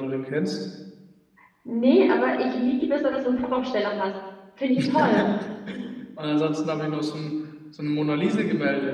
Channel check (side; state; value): both; identical; correlation 1.00